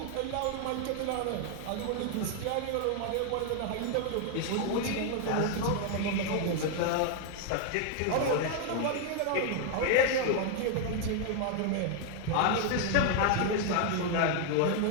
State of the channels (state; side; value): different; both; correlation 0.00